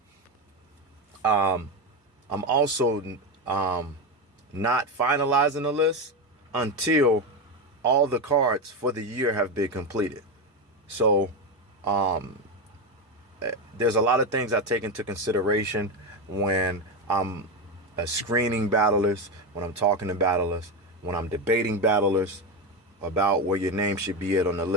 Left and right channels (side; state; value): both; normal; correlation 0.13